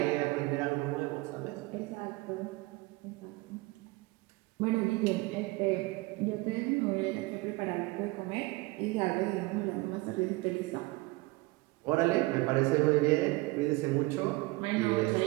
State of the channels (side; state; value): left; quieter; 22.5 dB